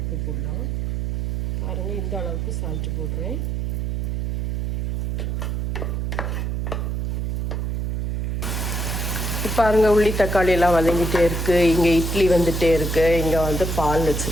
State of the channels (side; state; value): right; noise; hum, 1 dB below the sound